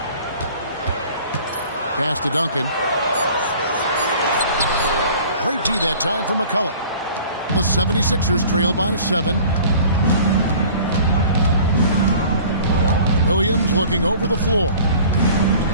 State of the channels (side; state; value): both; inverted; correlation -0.48